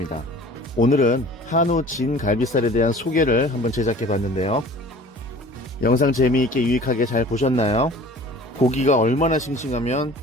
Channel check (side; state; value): both; normal; correlation 0.45